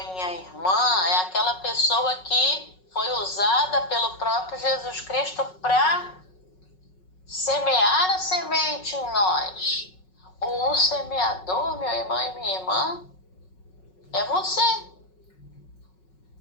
irmã, é aquela pessoa que foi usada pelo próprio Jesus Cristo para semear a semente em nós. Ou o semeador, meu irmão e minha irmã, é você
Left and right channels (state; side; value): late; right; 5.4 ms